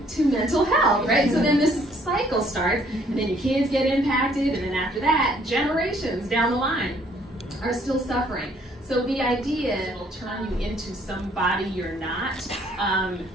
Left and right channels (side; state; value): both; normal; correlation 0.63